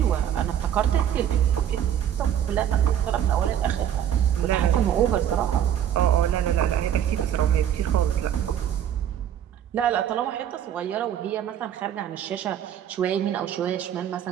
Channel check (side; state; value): left; quieter; 9.9 dB